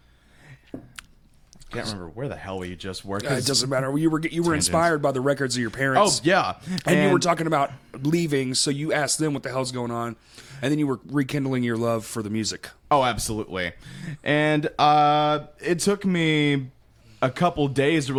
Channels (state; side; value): identical; both; correlation 1.00